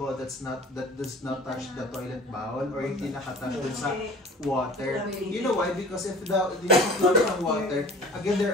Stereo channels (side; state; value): both; normal; correlation 0.44